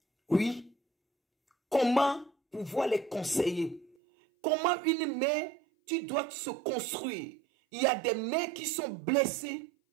Oui. Comment pouvoir les conseiller? Comment une mère, tu dois se construire? Il y a des mères qui sont blessées.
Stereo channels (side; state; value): left; drops out; at 4.0 s